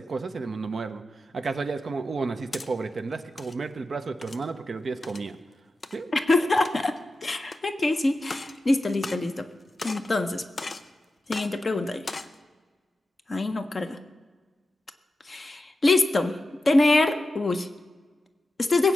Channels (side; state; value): both; normal; correlation 0.92